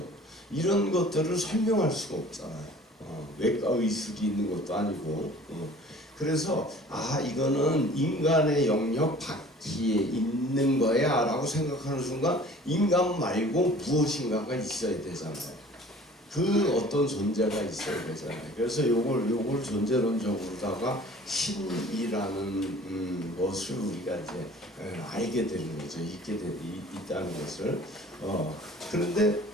이런 것들을 설명할 수가 없잖아요. 외과 의술이 있는 것도 아니고. 그래서 이거는 인간의 영역 밖에 있는 거야 라고 생각하는 순간 인간 말고 무엇인가가 있어야 되잖아요. 그 어떤 존재가 있어야 되잖아요. 그래서 요걸 존재론적으로다가 신이라는 것을 우리가 이제 알게 되는 거죠. 있다는 것을. 그런데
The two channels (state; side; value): normal; both; correlation 0.48